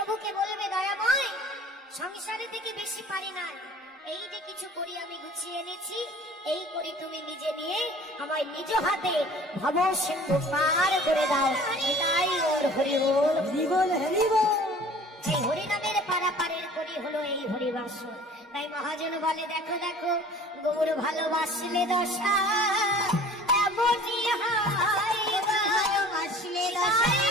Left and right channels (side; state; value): both; normal; correlation 0.47